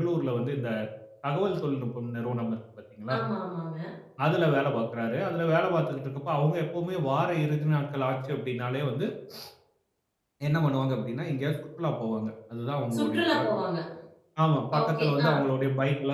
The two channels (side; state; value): both; identical; correlation 1.00